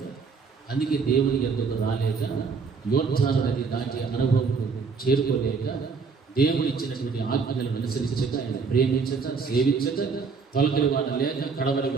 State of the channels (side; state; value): left; quieter; 5.1 dB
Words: అందుకే దేవుని ఎందుకు రాలేక, యోద్ధాలు నది దాటి అనుభవం చేరుకోలేక, దేవుడు ఇచ్చినటువంటి ఆజ్ఞలను అనుసరించక, ఆయన ప్రేమించక, సేవించక, తొలకరి వాడ లేక, కడవరి